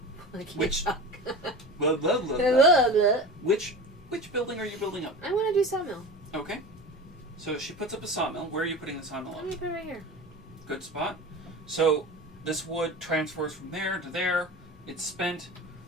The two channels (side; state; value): both; normal; correlation 0.32